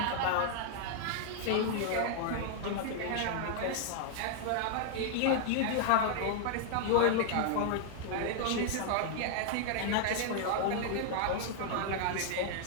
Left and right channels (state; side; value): different; both; correlation 0.00